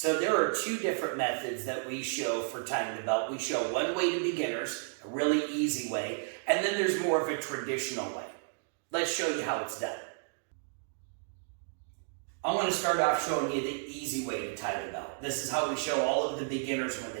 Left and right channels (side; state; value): left; silent; digital silence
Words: there are two different methods that we show for tying the belt. We show one way to beginners, a really easy way, and then there's more of a traditional way. Let's show you how it's done. I want to start off showing you the easy way to tie the belt. This is how we show all of the beginners when